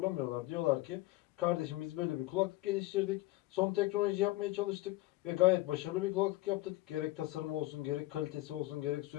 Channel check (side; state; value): right; quieter; 18.5 dB